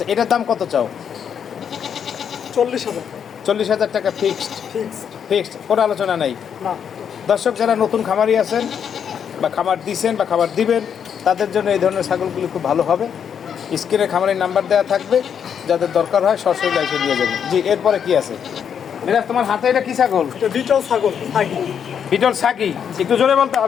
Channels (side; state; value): right; quieter; 7.9 dB